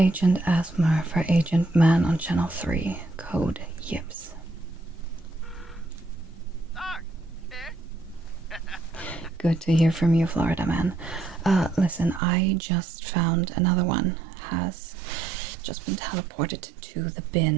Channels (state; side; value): drops out; left; at 12.2 s